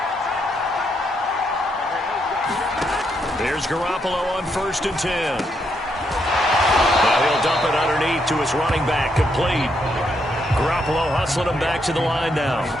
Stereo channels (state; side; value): normal; both; correlation 0.77